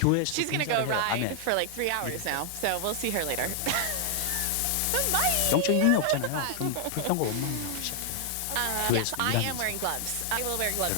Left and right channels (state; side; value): different; both; correlation 0.00